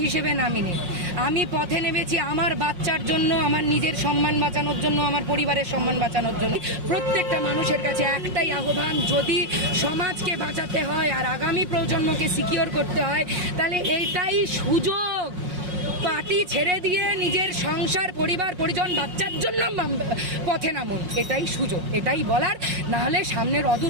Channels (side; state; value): left; late; 5.5 ms